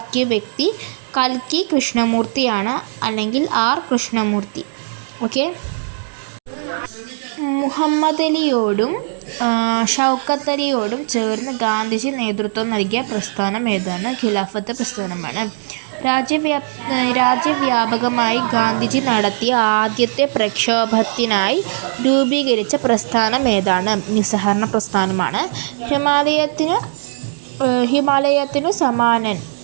വ്യക്തി കൽക്കി കൃഷ്ണമൂർത്തിയാണ്, അല്ലെങ്കിൽ ആർ കൃഷ്ണമൂർത്തി. ഓക്കെ. മുഹമ്മദ് അലിയോടും ഷൗക്കത്ത് അലിയോടും ചേർന്ന് ഗാന്ധിജി നേതൃത്വം നൽകിയ പ്രസ്ഥാനം ഏതാണ്? ഖിലാഫത്ത് പ്രസ്ഥാനമാണ്. രാജ്യവ്യാപകമായി ഗാന്ധിജി നടത്തിയ ആദ്യത്തെ പ്രക്ഷോഭത്തിനായി രൂപീകരിച്ച പ്രസ്ഥാനം ഏതാണ്? നിസ്സഹകരണ പ്രസ്ഥാനമാണ്. ഹിമാലയത്തിനു സമാനൻ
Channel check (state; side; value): silent; left; digital silence